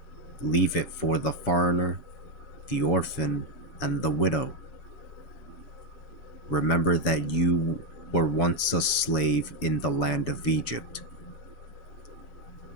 Leave it for the foreigner, the orphan, and the widow. Remember that you were once a slave in the land of Egypt.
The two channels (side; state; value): right; late; 7.1 ms